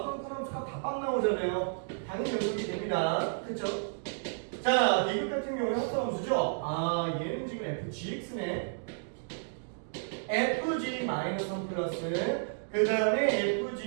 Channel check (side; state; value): left; silent; digital silence